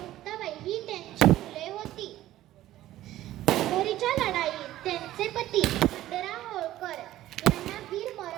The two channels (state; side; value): quieter; left; 14.4 dB